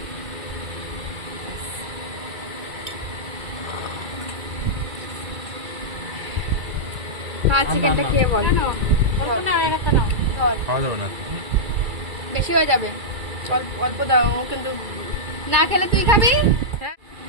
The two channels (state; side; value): late; left; 2.3 ms